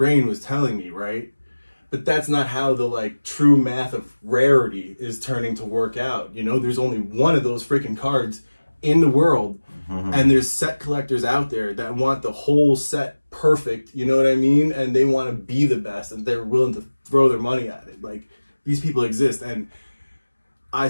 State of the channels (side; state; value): both; inverted; correlation -1.00